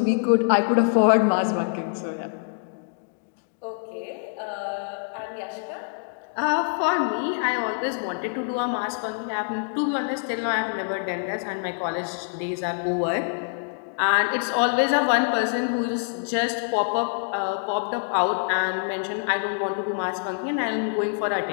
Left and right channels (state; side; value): silent; right; digital silence